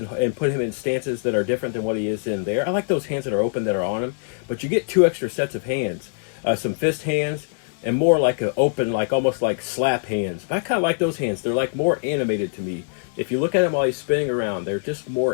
put him in stances that are different than what he is in there. I like those hands that are open that are on him. But you get 2 extra sets of hands. Some fist hands and more like an open, like almost like slap hands. But I kind of like those hands. They're like more animated to me. If you look at him while he's spinning around, they're just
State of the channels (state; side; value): silent; right; digital silence